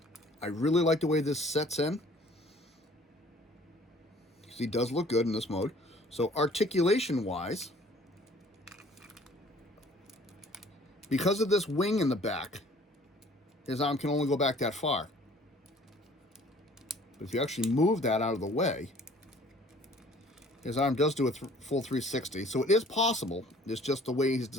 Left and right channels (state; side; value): normal; both; correlation 0.54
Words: I really like the way this sets in. He does look good in this mode. So articulation-wise, because of this wing in the back, his arm can only go back that far. But if you actually move that out of the way, his arm does do a full 360. So it is possible. It's just the way he's